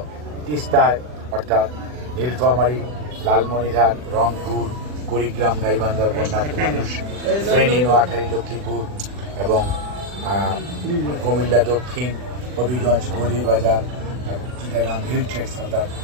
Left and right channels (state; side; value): late; left; 40 ms